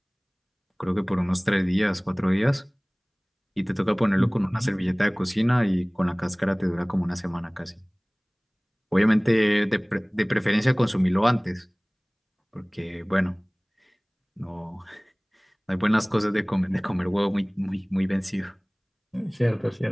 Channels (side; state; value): both; identical; correlation 1.00